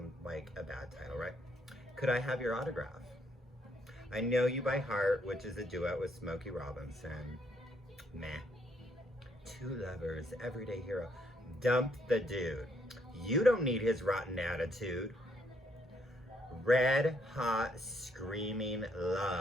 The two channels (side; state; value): both; normal; correlation 0.72